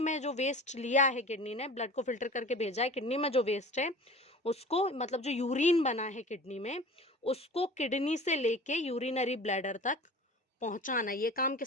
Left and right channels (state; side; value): normal; both; correlation 0.40